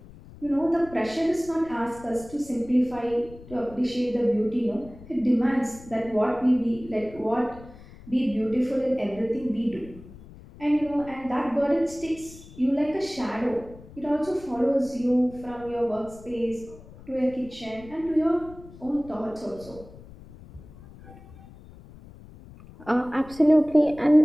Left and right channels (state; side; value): noise; left; rumble, 19 dB below the sound